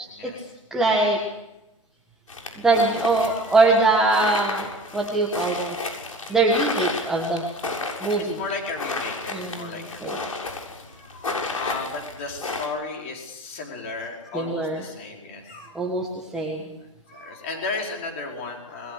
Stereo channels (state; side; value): normal; both; correlation 0.41